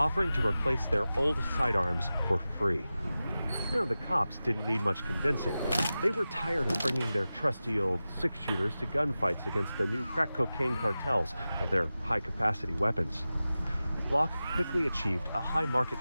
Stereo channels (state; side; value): inverted; both; correlation -0.95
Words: to replace their old sidearms for free. Now, the cops didn't need much convincing. They were tired of bringing their trusty old six-shooters to gunfights against the new crack cocaine cartels and their high-capacity weapons. Glock quickly achieved a high market